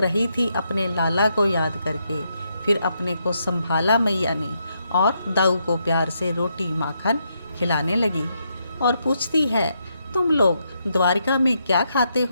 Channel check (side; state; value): both; inverted; correlation -0.79